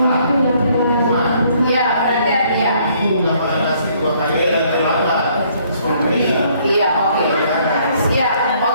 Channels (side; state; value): both; inverted; correlation -0.65